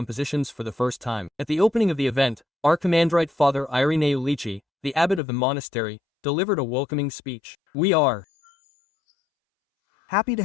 for the first time. At the opening of the event, Archimandrite Father Irineu Lici, the abbot of the monastery, delivered a welcoming speech. We are happy to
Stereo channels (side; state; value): right; drops out; at 5.2 s